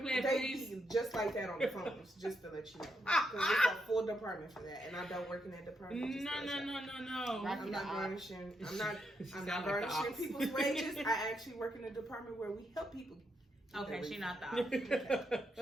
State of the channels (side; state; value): both; normal; correlation 0.80